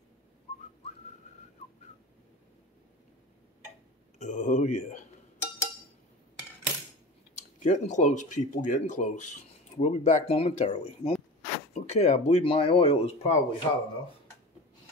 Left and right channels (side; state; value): both; normal; correlation 0.32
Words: Oh yeah. Getting close, people, getting close. We'll be back momentarily. Okay, I believe my oil is probably hot enough.